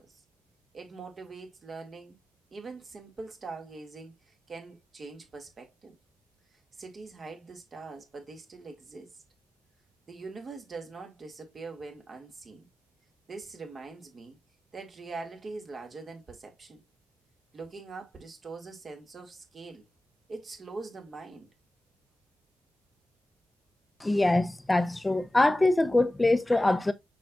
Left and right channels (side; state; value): both; normal; correlation 0.96